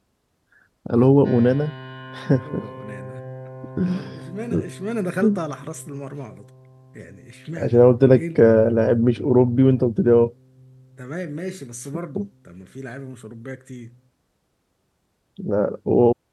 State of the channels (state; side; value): identical; both; correlation 1.00